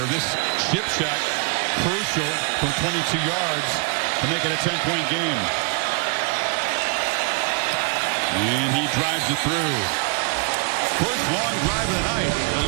This chip shot, crucial from 22 yards to make it a 10-point game. And he drives it through. First long drive of the night,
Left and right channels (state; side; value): quieter; left; 34.5 dB